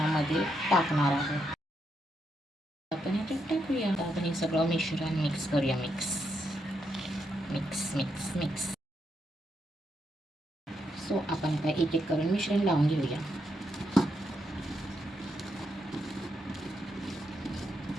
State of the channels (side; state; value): both; normal; correlation 0.81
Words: टाकणार आहोत. आपण हे टाकूया. आपण हे सगळं मिश्रण मिक्स करूया. Mix mix mix mix so आपण आता एक एक करून मिश्रण लावून घेऊया.